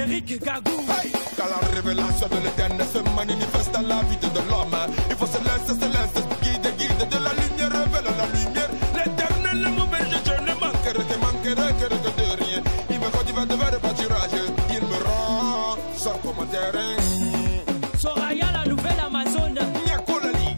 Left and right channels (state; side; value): inverted; both; correlation -1.00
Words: Gagou. Hey, quand la révélation de l'éternel se manifeste dans la vie de l'homme, il faut se laisser guide de la lumière, révèle la lumière. L'éternel ne m'auberge, je ne manquerai que de rien. Il me conduit vers le pâturage, il me rend sans commentaire. Soraya, la nouvelle Amazone. Niakolali,